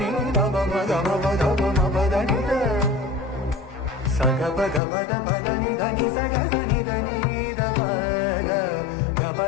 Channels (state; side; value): drops out; right; at 4.8 s